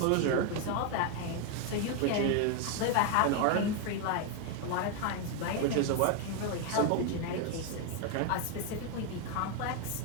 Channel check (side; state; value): both; different; correlation 0.01